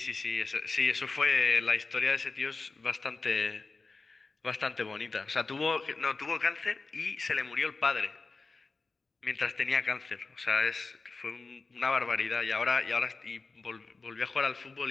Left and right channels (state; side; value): quieter; right; 4.0 dB